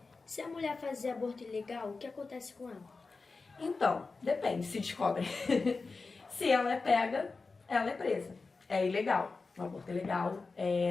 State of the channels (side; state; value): right; quieter; 4.1 dB